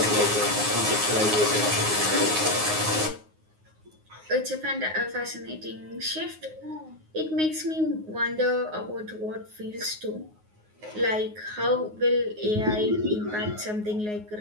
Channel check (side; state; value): left; late; 9.5 ms